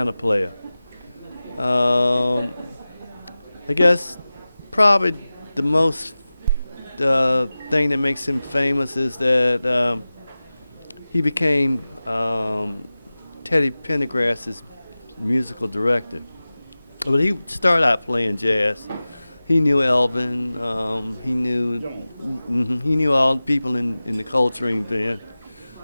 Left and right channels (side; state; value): both; inverted; correlation -0.97